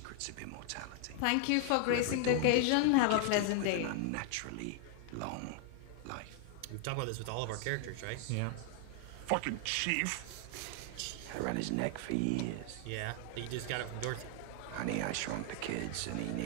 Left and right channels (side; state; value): both; different; correlation 0.00